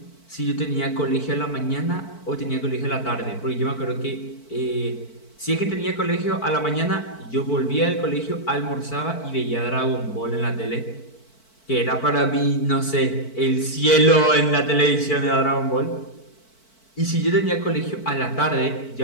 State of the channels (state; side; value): late; right; 4.5 ms